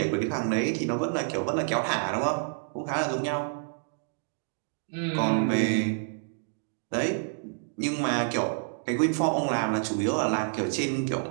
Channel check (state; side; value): silent; left; digital silence